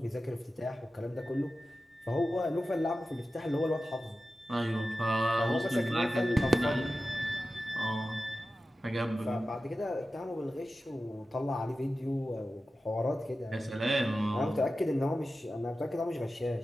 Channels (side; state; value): both; normal; correlation 0.94